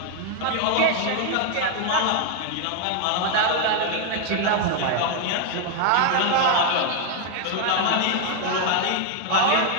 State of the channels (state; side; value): different; both; correlation 0.00